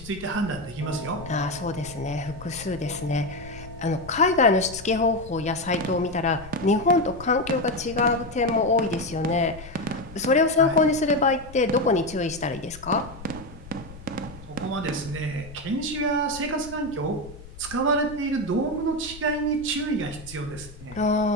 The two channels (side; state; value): left; noise; rumble, 17 dB below the sound